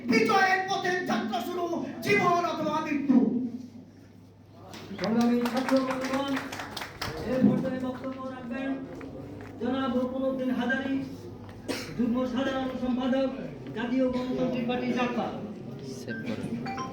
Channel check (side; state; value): both; identical; correlation 1.00